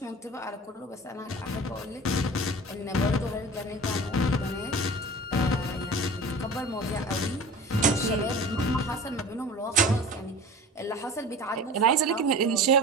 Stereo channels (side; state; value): both; normal; correlation 0.37